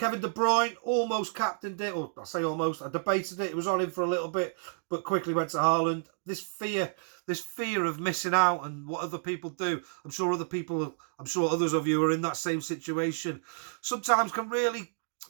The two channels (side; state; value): left; silent; digital silence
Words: De Bruyne almost captained it. Or I say almost. I debated it. It was on him for a little bit, but quickly went to Haaland. This fear of missing out and what other people do. I'm sure others of you are in that same situation. Sometimes can really